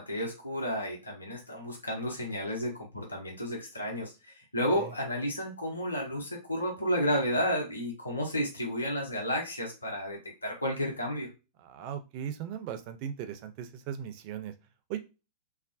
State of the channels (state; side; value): inverted; both; correlation -0.56